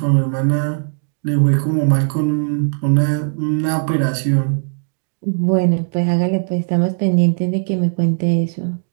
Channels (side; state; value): left; silent; 67 dB below the other